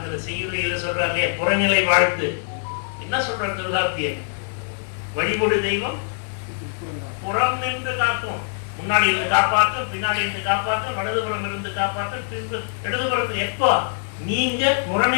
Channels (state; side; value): silent; right; digital silence